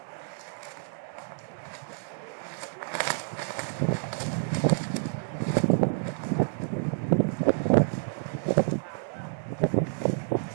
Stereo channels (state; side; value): silent; left; digital silence